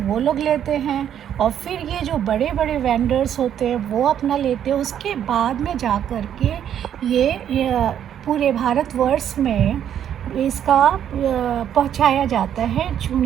वो लोग लेते हैं, और फिर ये जो बड़े बड़े वेंडर्स होते हैं वो अपना लेते हैं। उसके बाद में जा कर के ये पूरे भारतवर्ष में इसका पहुंचाया जाता है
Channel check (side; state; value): left; quieter; 9.7 dB